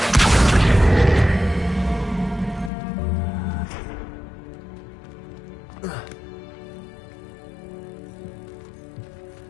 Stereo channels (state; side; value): drops out; right; at 2.7 s